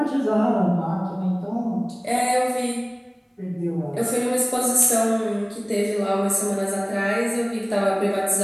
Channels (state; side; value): identical; both; correlation 1.00